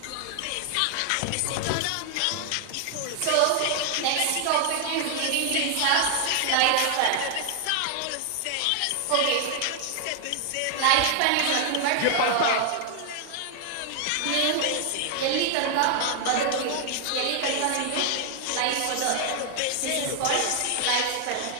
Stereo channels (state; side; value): different; both; correlation 0.00